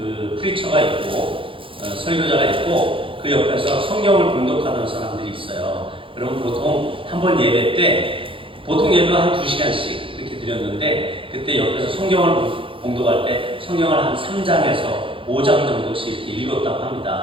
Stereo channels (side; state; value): left; late; 0.25 ms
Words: 프리처가 있고 설교자가 있고 그 옆에서 성경을 봉독하는 사람들이 있어요. 그럼 보통 한 번 예배 때 보통 예배 한 2시간씩 이렇게 드렸는데 그때 옆에서 성경을 봉독할 때 성경을 한 3장에서 5장 정도씩 이렇게 읽었다고